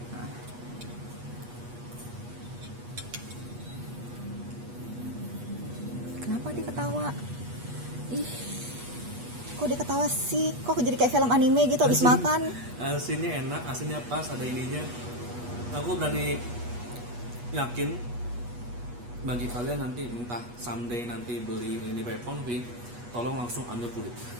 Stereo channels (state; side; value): late; left; 8.3 ms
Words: Nah. Kenapa dia ketawa? Ih. Kok dia ketawa sih? Kok jadi kayak film anime gitu habis makan? Asinnya enak, asinnya pas, ada ininya. Aku berani yakin bagi kalian nanti entah someday nanti beli ini Pepon tolong langsung ambil kulit.